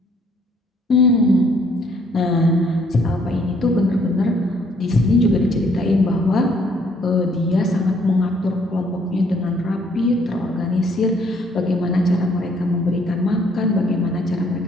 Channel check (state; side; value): normal; both; correlation 0.65